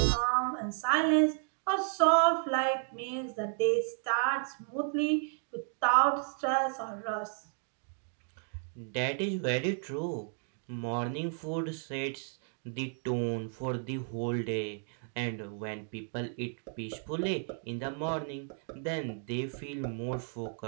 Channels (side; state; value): left; silent; 56 dB below the other